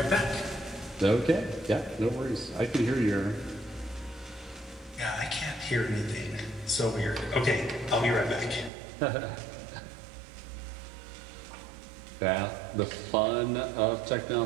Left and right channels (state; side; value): drops out; left; at 8.7 s